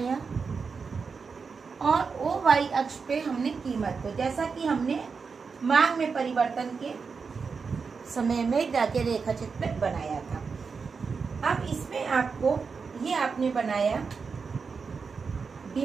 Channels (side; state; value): left; quieter; 5.2 dB